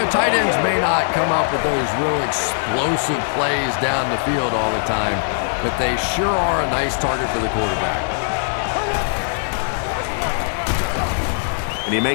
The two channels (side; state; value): right; silent; digital silence